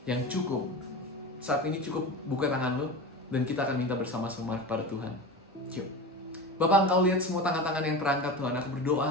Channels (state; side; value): normal; both; correlation 0.29